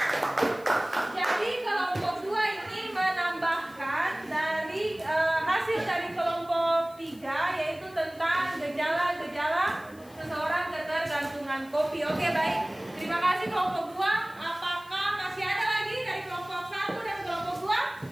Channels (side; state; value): left; noise; hiss, 25 dB below the sound